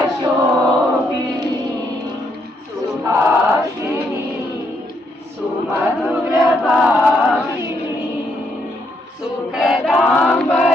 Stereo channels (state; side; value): normal; both; correlation 0.75